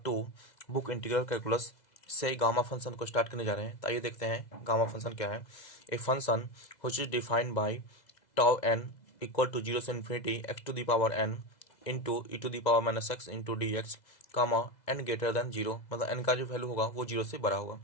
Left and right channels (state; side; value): late; right; 2.0 ms